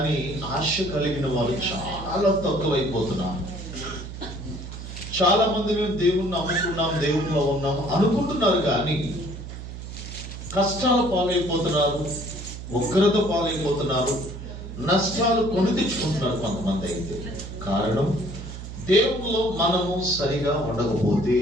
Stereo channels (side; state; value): right; noise; hum, 10 dB below the sound